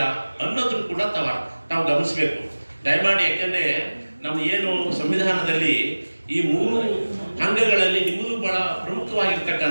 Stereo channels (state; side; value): inverted; both; correlation -1.00